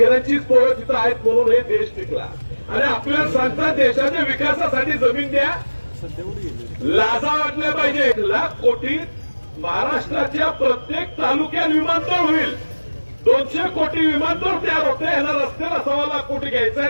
पोरं तिथं आहेत म्हणून हे देश टिकला. आणि आपल्याला सांगतात देशाच्या विकासासाठी जमीन द्या, लाजा वाटल्या पाहिजे. 1 लाख कोटी महाराष्ट्राच्या प्रत्येक तालुक्यात विमानतळ होईल. 200 कोटी विमानतळ तयार होते. यांना रस्त्याला 1.25 लाख कोटी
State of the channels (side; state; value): both; inverted; correlation -1.00